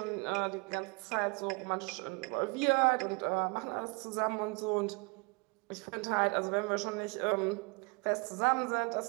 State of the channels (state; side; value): quieter; left; 29.8 dB